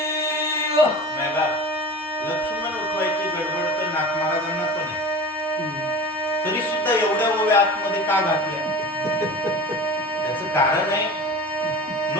मेला लक्ष्मण उठवायची गडबड तर नाथ महाराजांना पण आहे. तरी सुद्धा एवढ्या ओव्या आतमध्ये का घातल्या. त्याचं कारण आहे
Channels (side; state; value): both; normal; correlation 0.35